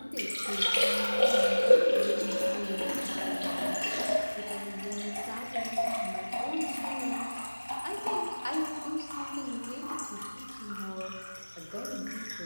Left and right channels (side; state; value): both; inverted; correlation -1.00